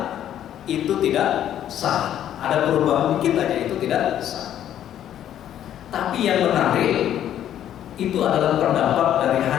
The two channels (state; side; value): quieter; right; 10.9 dB